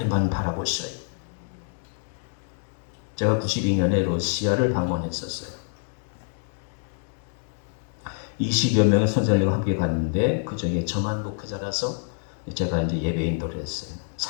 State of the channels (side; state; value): right; silent; 61 dB below the other